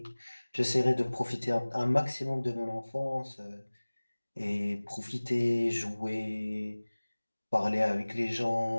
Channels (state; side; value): inverted; both; correlation -1.00